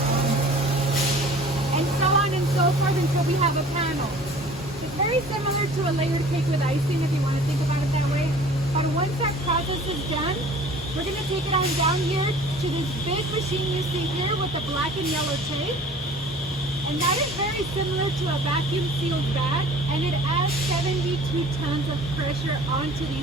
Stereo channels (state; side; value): normal; both; correlation 0.47